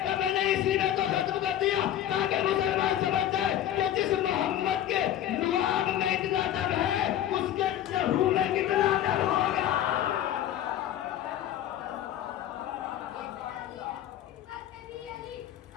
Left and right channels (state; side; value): quieter; right; 11.5 dB